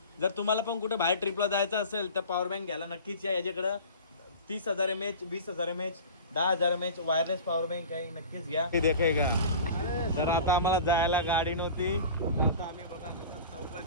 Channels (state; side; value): inverted; both; correlation -0.36